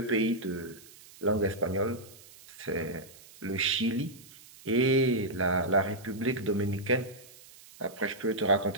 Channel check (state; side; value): noise; right; hiss, 21 dB below the sound